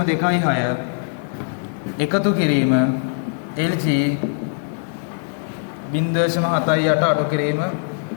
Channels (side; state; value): right; silent; digital silence